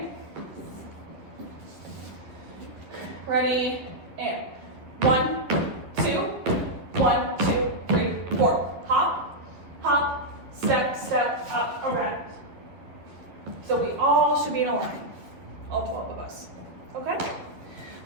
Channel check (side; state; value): left; late; 11 ms